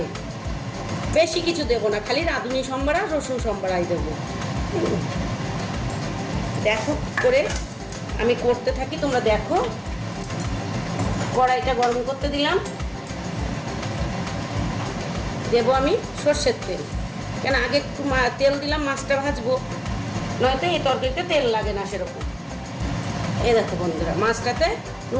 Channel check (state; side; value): identical; both; correlation 1.00